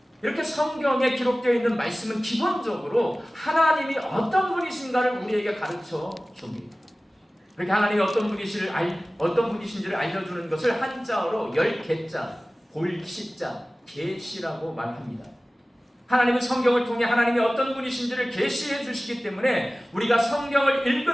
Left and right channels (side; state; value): both; normal; correlation 0.97